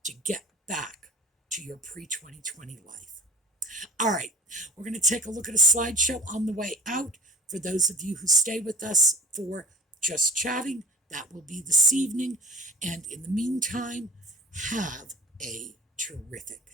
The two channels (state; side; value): normal; both; correlation 0.41